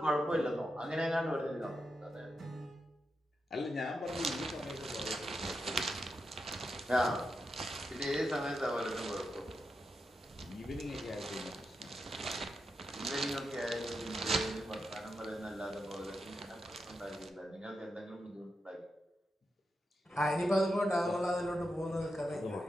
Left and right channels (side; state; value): both; normal; correlation 0.87